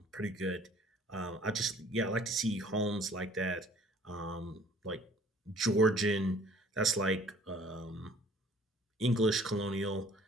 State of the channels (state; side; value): normal; both; correlation 0.54